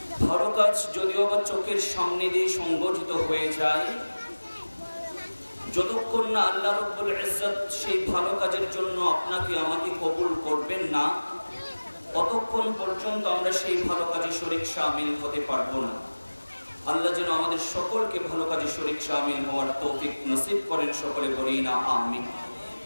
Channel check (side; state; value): both; inverted; correlation -1.00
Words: ভালো কাজ যদিও বা চোখের সামনে দিয়ে সংগঠিত হয়ে যায়, যতক্ষণ না আল্লাহ রাব্বুল ইজ্জত সেই ভালো কাজের জন্য আপনাকে আমাকে কবুল করবেন না, ততক্ষণ পর্যন্ত আমরা সেই ভালো কাজে শরীক শামিল হতে পারবো না। আল্লাহ যেন আমাদের সকলকে ভালো কাজে শরীক শামিল হওয়ার তৌফিক নসিব করেন, সকলে বলি না আমিন।